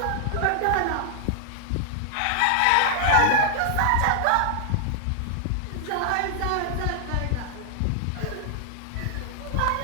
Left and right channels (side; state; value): both; different; correlation 0.00